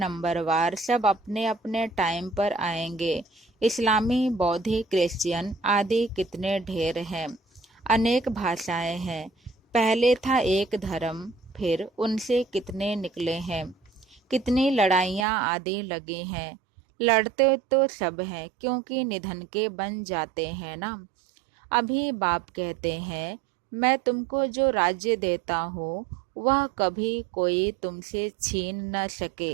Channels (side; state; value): left; drops out; at 15.2 s